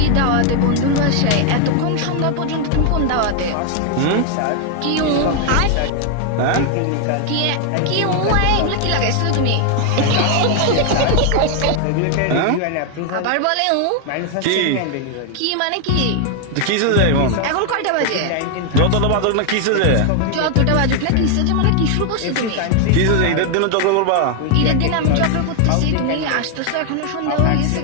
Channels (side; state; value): both; different; correlation 0.00